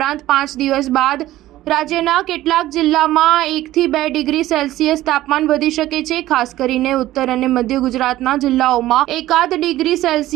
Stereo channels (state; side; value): quieter; left; 15.3 dB